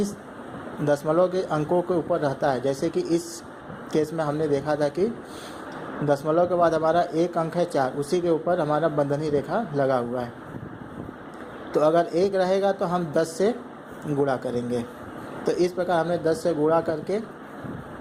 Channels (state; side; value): identical; both; correlation 1.00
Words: दशमलव के अंकों के ऊपर रहता है, जैसे कि इस केस में हमने देखा था कि दशमलव के बाद हमारा एक अंक है 4, उसी के ऊपर हमारा बंधनी रेखा लगा हुआ है। तो अगर 1 रहेगा तो हम 10 से गुणा करेंगे। तो इस प्रकार हमने 10 से गुणा करके